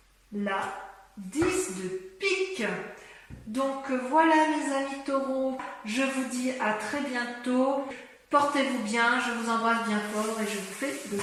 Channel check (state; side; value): identical; both; correlation 1.00